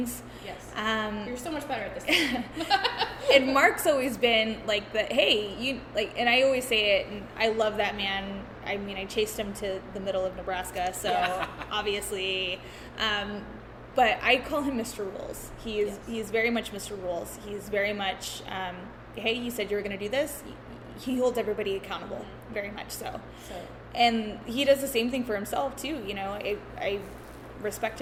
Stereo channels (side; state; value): both; identical; correlation 1.00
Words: Yes. You're so much better at this. And Mark's always been like the, hey, you like, and I always say it, and I love that man. I mean, I chased him to the middle of Nebraska, so obviously, but I call him Mr. Rules. He is very much Mr. Rules. He's very much, hey, you said you were going to do this. He holds everybody accountable, very much so. And he does the same thing for himself too. I respect